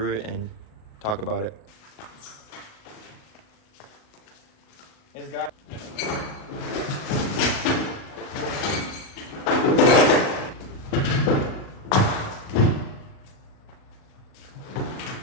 it and talk about it. It's got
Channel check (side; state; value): right; late; 38 ms